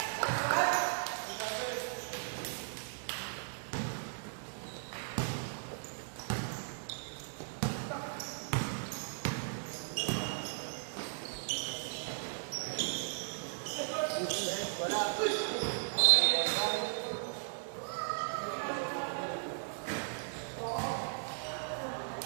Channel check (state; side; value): silent; left; digital silence